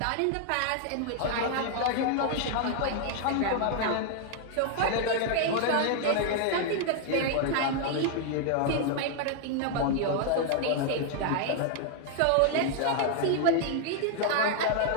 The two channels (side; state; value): both; different; correlation 0.00